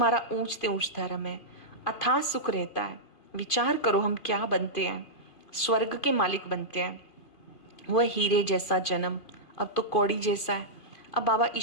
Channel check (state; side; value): late; right; 2.5 ms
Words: ऊंचते ऊंच धर्म है, अथाह सुख रहता है। विचार करो हम क्या बनते हैं, स्वर्ग के मालिक बनते हैं। वह हीरे जैसा जन्म अब तो कौड़ी जैसा है। अब बाबा